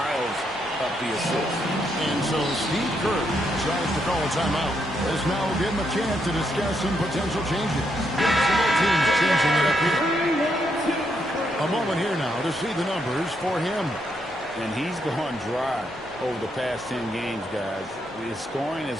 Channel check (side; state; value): both; normal; correlation 0.78